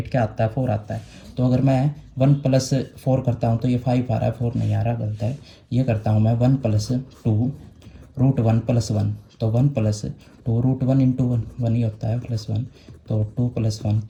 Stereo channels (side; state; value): both; identical; correlation 1.00